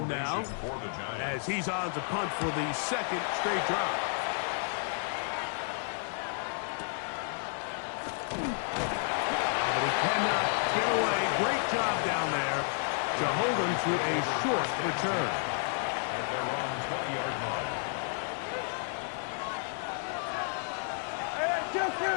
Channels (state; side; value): silent; right; 57 dB below the other